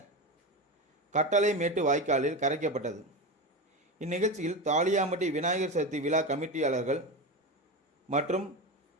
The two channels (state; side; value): normal; both; correlation 0.20